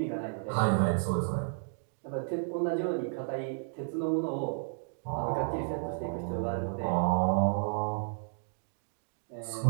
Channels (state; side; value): silent; left; digital silence